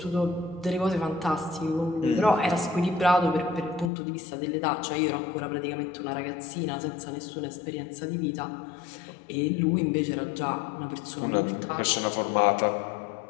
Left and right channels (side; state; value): right; drops out; at 3.9 s